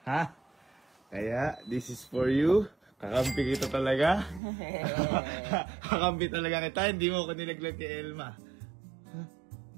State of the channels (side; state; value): left; drops out; at 4.4 s